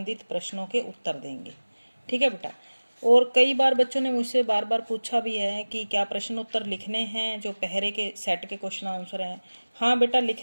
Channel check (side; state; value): both; inverted; correlation -1.00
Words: प्रश्नों के उत्तर देंगे। ठीक है बेटा। और कई बार बच्चों ने मुझसे बार बार पूछा भी है कि क्या प्रश्न उत्तर लिखने हैं जो पहरे के सेट के क्वेश्चन आंसर हैं। हाँ बेटा